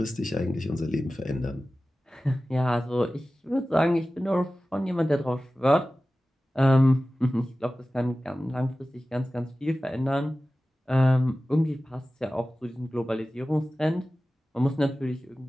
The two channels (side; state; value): both; normal; correlation 0.95